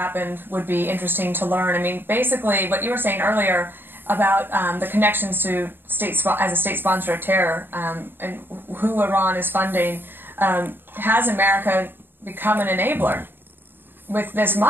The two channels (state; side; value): late; left; 0.098 ms